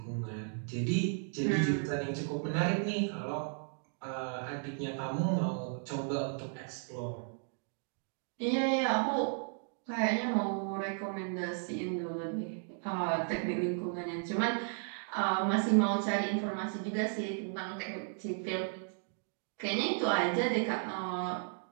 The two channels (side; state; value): left; silent; 55 dB below the other